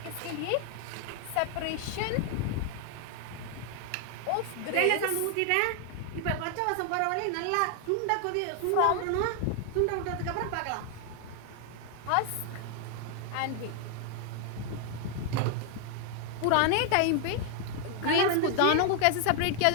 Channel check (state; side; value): different; both; correlation 0.00